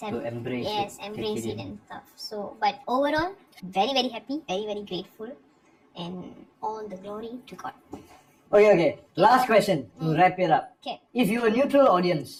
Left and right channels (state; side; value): identical; both; correlation 1.00